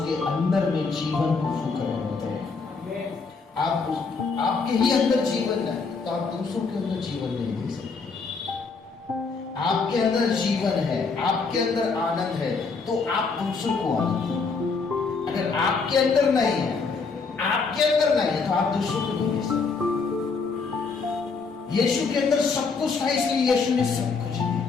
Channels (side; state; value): right; quieter; 4.7 dB